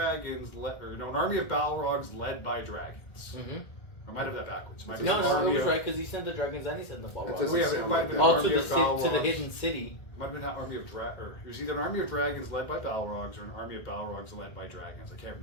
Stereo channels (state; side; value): late; right; 1.6 ms